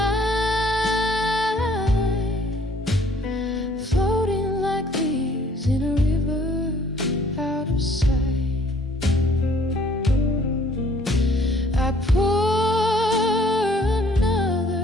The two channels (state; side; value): normal; both; correlation 0.59